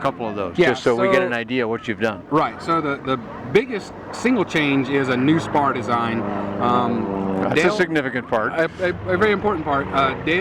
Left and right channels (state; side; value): identical; both; correlation 1.00